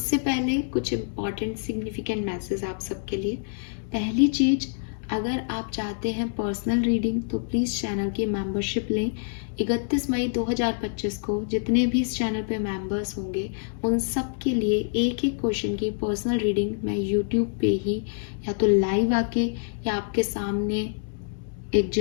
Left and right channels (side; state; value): right; silent; 61 dB below the other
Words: पहले कुछ इम्पॉर्टेंट सिग्निफिकेंट मैसेज आप सबके लिए। पहली चीज़, अगर आप चाहते हैं पर्सनल रीडिंग तो प्लीज़ चैनल की मेंबरशिप लें। 31 मई 2025 को जितने भी इस चैनल पे मेंबर्स होंगे उन सब के लिए एक एक क्वेश्चन की पर्सनल रीडिंग मैं यूट्यूब पे ही या तो लाइव आके या आपके सामने एक